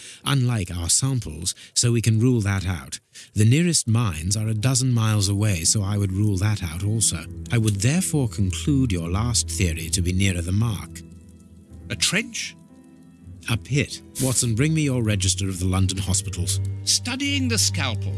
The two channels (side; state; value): both; identical; correlation 1.00